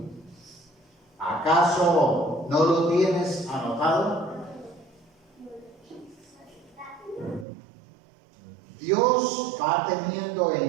¿Acaso no lo tienes anotado? Dios va teniendo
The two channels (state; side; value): drops out; left; at 7.5 s